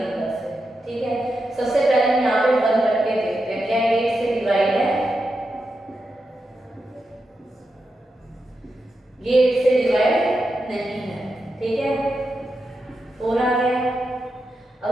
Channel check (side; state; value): both; normal; correlation 0.87